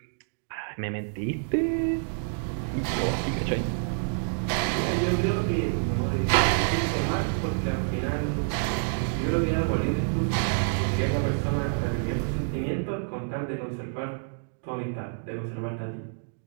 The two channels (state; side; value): silent; left; digital silence